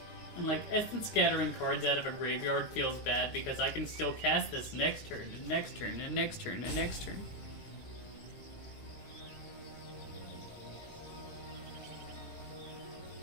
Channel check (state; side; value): late; right; 18 ms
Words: And like, Essence scattering cards out of a graveyard feels bad because I can still cast this next turn, and next turn, and next turn, and next turn.